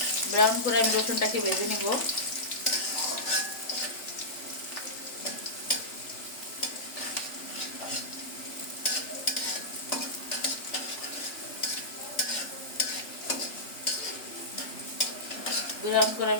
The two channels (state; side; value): late; right; 3.4 ms